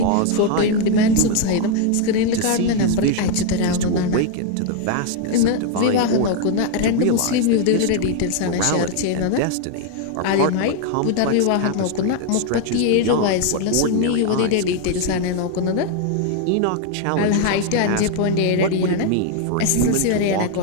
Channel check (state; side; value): different; both; correlation 0.01